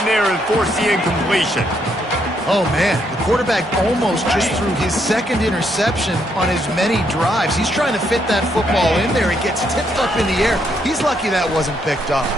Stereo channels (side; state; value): both; normal; correlation 0.74